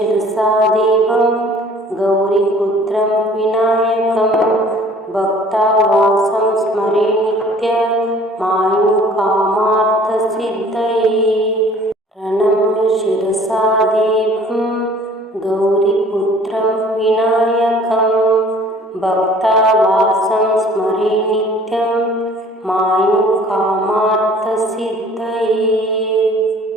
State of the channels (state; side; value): normal; both; correlation 0.52